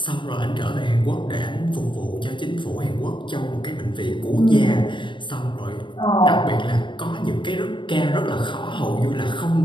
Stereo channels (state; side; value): late; right; 0.23 ms